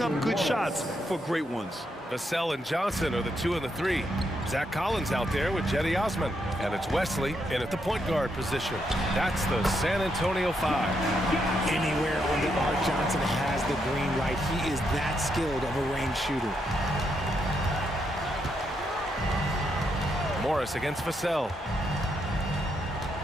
up good shots for great ones. Vassell and Johnson are the 2 and the 3. Zach Collins out there with Jetty Osman. And it's Wesley in at the point guard position. That's the San Antonio 5. Anywhere on the arc, Johnson has the green light. He is that skilled of a range shooter. Morris against Vassell.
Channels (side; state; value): both; normal; correlation 0.79